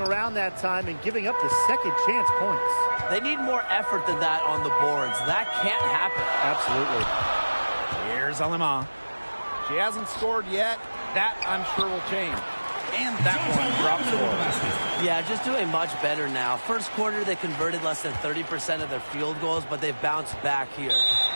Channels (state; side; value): inverted; both; correlation -1.00